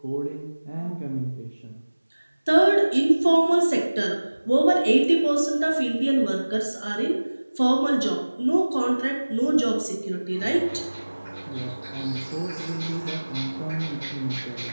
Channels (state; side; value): inverted; both; correlation -1.00